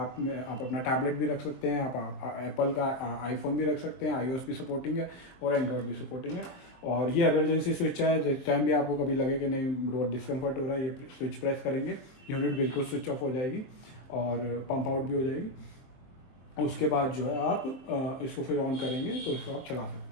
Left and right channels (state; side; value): late; right; 22 ms